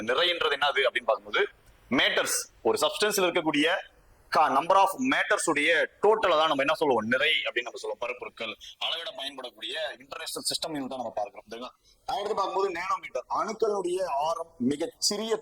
நிறைன்றது என்னது அப்படின்னு பார்க்கும்போது மேட்டர்ஸ், ஒரு சப்ஸ்டன்ஸ்ல இருக்கக்கூடிய நம்பர் ஆஃப் மேட்டர்ஸ் உடைய டோட்டலை தான் நம்ம என்ன சொல்லுவோம், நிறை அப்படின்னு நம்ம சொல்லுவோம். பருப்பொருட்கள் அளவிட பயன்படக்கூடிய இன்டர்நேஷனல் சிஸ்டம் தான் நம்ம பார்க்கிறோம். அடுத்து பார்க்கும்போது நேனோமீட்டர், அணுக்களுடைய ஆரம், மிகச் சிறிய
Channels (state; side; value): identical; both; correlation 1.00